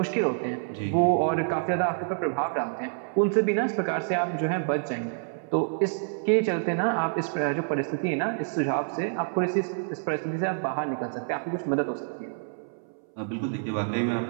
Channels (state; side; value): silent; left; 60 dB below the other